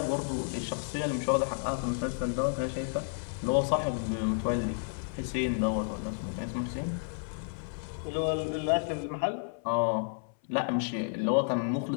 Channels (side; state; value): right; silent; 57 dB below the other